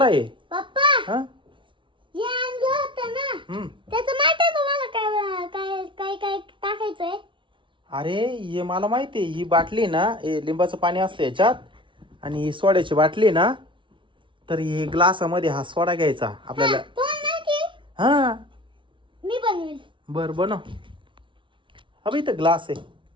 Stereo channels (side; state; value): left; late; 0.24 ms